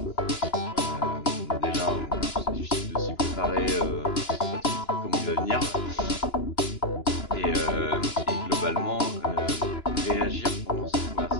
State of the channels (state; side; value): late; right; 2.9 ms